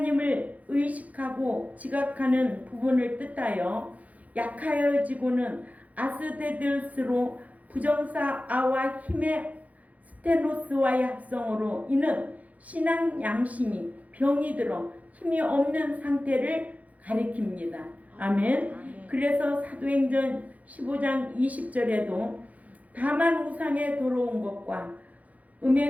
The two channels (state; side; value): late; left; 0.073 ms